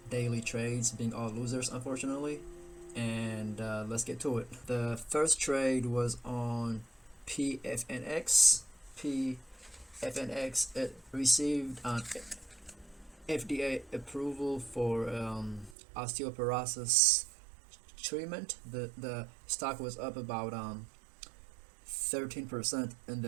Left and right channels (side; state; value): left; drops out; at 15.8 s